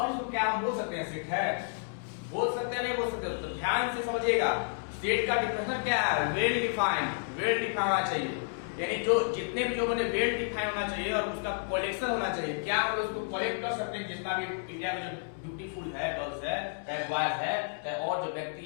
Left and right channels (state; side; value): silent; right; digital silence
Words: इसको क्या हम बोल सकते हैं, सेट है, बोल सकते हैं नहीं बोल सकते, तो ध्यान से समझिएगा। सेट का डिफिनेशन क्या है, वेल डिफाइंड, वेल डिफाइन होना चाहिए, यानी जो जितने भी लोगों ने वेल डिफाइन होना चाहिए और उसका कलेक्शन होना चाहिए। क्या हम उसको कलेक्ट कर सकते हैं, जितना भी इंडिया में जो ब्यूटीफुल है, गर्ल्स है, चाहे बॉयज है, चाहे और जो